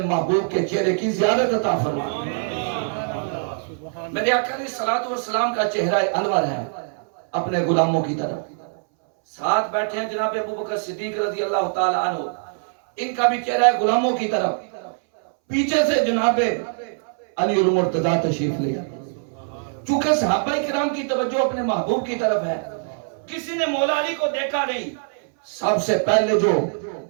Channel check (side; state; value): left; silent; 62 dB below the other